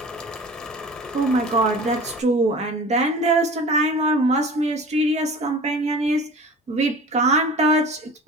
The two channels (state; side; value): normal; both; correlation 0.40